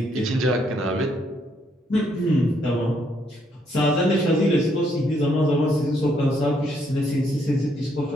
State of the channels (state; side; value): normal; both; correlation 0.72